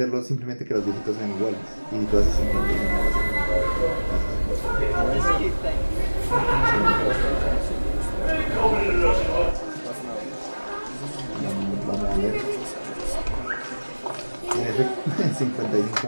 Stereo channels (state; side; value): inverted; both; correlation -1.00